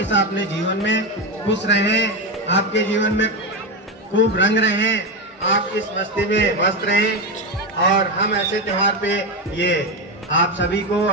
अपने जीवन में खुश रहें, आपके जीवन में खूब रंग रहें, आप इस मस्ती में मस्त रहें। और हम ऐसे त्योहार पे ये आप सभी को,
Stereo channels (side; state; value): both; normal; correlation 0.13